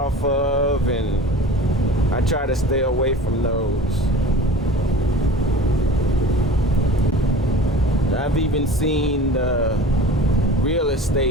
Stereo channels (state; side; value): normal; both; correlation 0.40